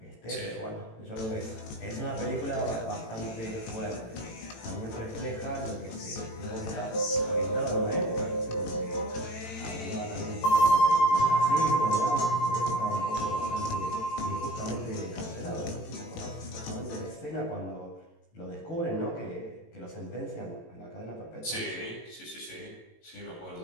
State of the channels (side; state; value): right; late; 18 ms